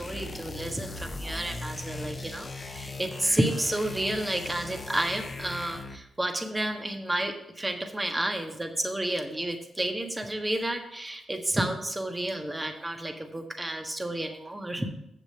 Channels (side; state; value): both; normal; correlation 0.93